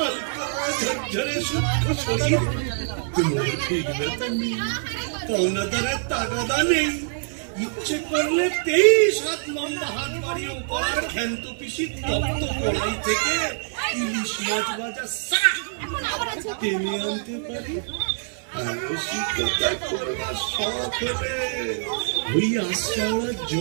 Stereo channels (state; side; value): silent; left; digital silence